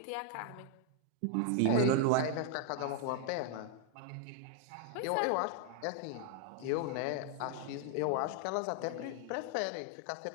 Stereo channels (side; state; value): both; different; correlation 0.00